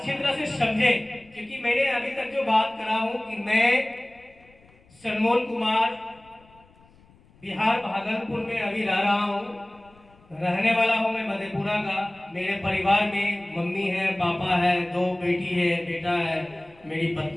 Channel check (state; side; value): noise; left; rumble, 29 dB below the sound